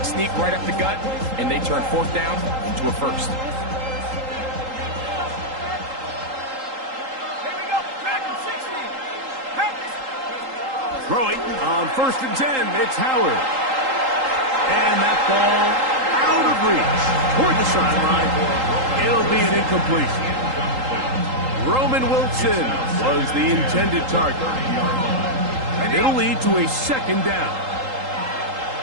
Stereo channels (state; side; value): late; left; 3.8 ms